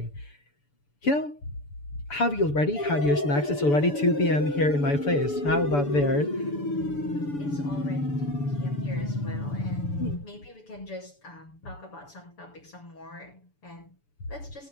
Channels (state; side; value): late; right; 6.9 ms